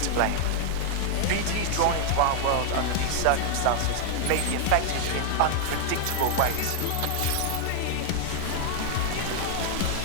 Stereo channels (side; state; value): both; different; correlation 0.00